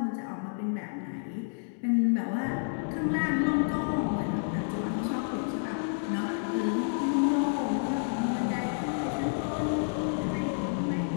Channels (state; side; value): silent; right; digital silence